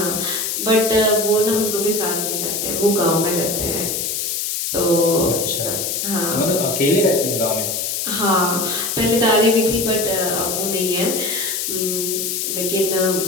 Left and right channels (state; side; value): noise; left; hiss, 1 dB below the sound